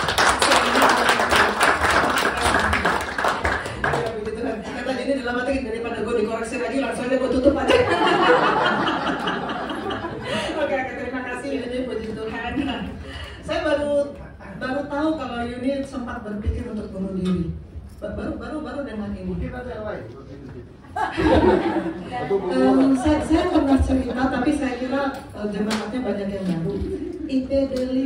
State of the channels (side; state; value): both; identical; correlation 1.00